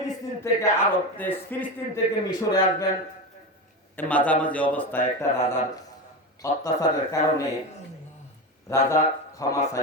থেকে আরব দেশ ফিলিস্তিন থেকে মিশরে আসবেন মাঝামাঝি অবস্থায় একটা রাজার অত্যাচারের কারণে রাজা ক্ষমা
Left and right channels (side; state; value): both; normal; correlation 0.20